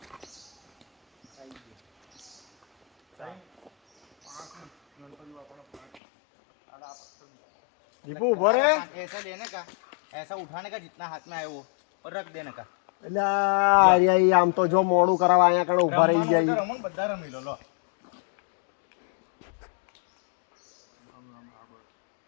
दीपू भरे ऐसा लेने का, ऐसा उठाने का जितना हाथ में आए वो और रख देने का. એટલે આમ તો જો મોડું કરાવવા અહીંયા કણે ઉભા રહી જાય. રમણ બધા રમી લો.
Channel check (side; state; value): right; drops out; at 6.0 s